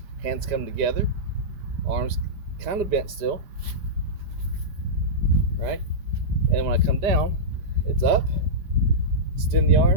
Hands come together. Arms kind of bent still, right? And when I come down, it's up, extend the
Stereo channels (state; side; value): late; left; 5.1 ms